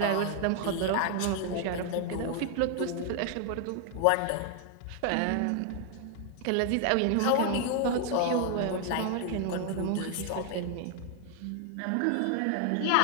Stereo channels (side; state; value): both; different; correlation 0.00